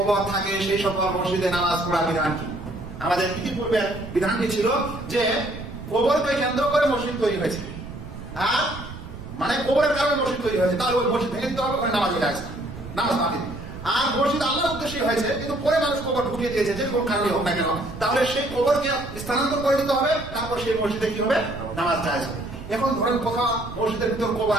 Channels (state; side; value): noise; right; rumble, 12 dB below the sound